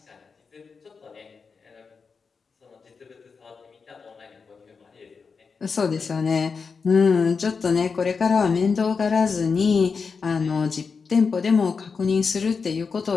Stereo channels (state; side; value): quieter; right; 5.2 dB